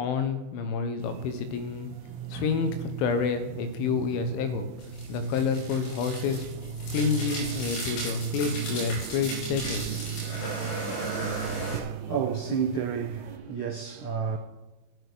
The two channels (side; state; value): right; late; 24 ms